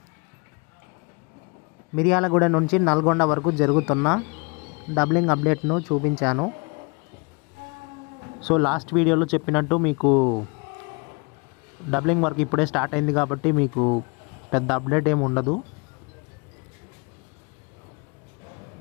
మిర్యాలగూడ నుంచి నల్గొండ వరకు జరుగుతున్న డబ్లింగ్ అప్డేట్ను చూపించాను. సో లాస్ట్ వీడియోలో చెప్పినట్టు మీకు డబ్లింగ్ వర్క్ ఇప్పుడే స్టార్ట్ అయింది కాబట్టి మీకు పెద్ద అప్డేట్ ఏమి ఉండదు.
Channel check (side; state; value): right; quieter; 31.6 dB